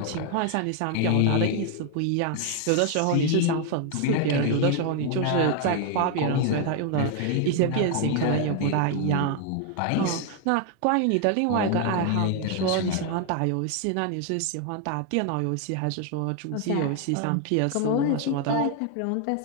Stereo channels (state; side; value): different; both; correlation 0.00